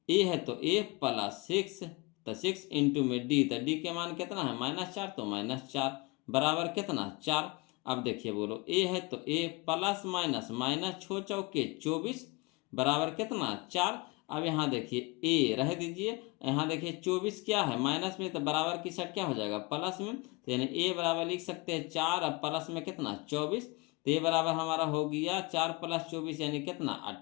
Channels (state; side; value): quieter; right; 25.6 dB